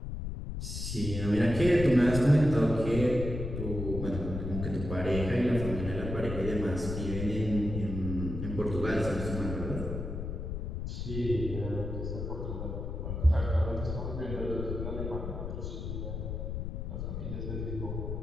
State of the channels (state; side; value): noise; left; rumble, 5 dB below the sound